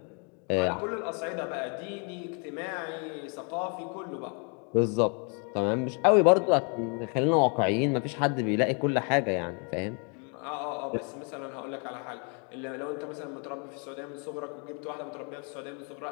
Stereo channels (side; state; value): right; quieter; 37.3 dB